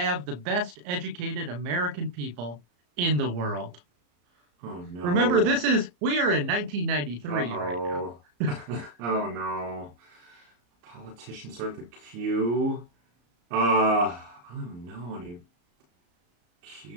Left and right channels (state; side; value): late; left; 34 ms